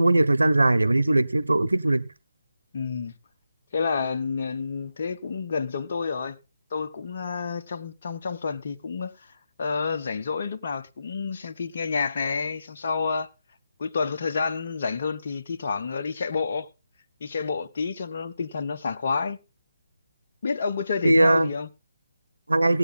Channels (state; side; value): inverted; both; correlation -0.90